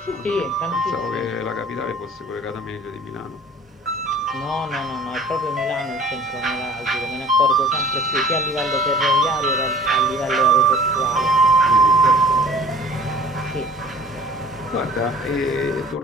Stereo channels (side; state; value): both; normal; correlation 0.48